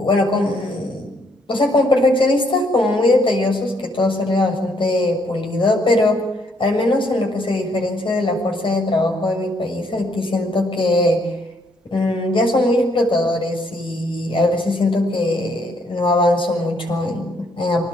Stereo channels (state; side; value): normal; both; correlation 0.70